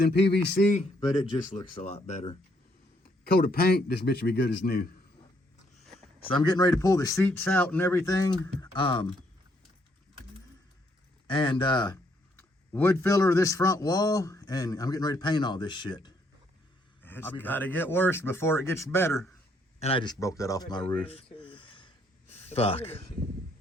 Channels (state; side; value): normal; both; correlation 0.71